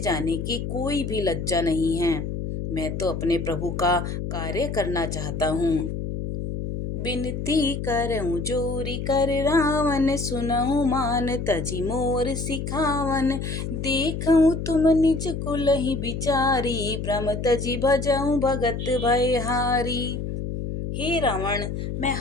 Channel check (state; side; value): noise; left; hum, 4 dB below the sound